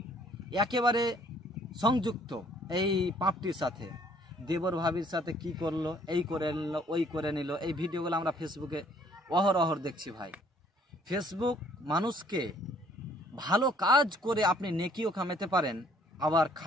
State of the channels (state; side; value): normal; both; correlation 0.61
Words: একেবারে সংযুক্ত এই পাপটির সাথে। দেবর ভাবির সাথে কি করলো, এই করে নিল, ওই করে নিল, এই ভিডিওগুলো আমরা ফেসবুকে অহরহ দেখছি ভাই। ফেসবুক মানুষকে ভালো কাজ করে আপনি নেকিও কামাতে পারেন, আবার